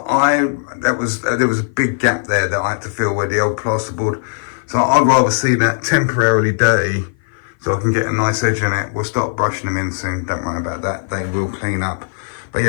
there was a big gap there that I had to fill where the old plasterboard. So I'd rather see that temporarily dirty so I can get a nice edge on it. We'll start brushing them in soon, don't worry about that, they will clean up. But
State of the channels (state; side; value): silent; right; 55 dB below the other